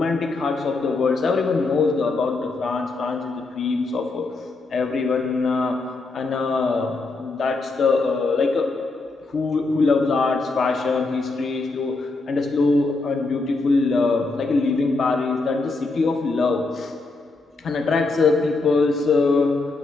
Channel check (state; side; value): quieter; right; 3.6 dB